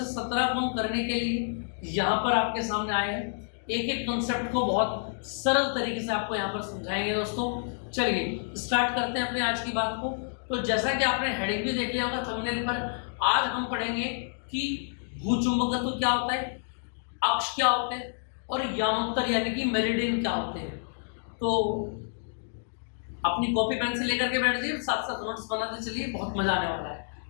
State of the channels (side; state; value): right; silent; digital silence